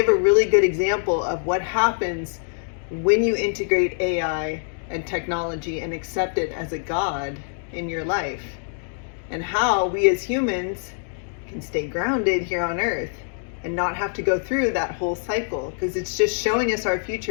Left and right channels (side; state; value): right; silent; digital silence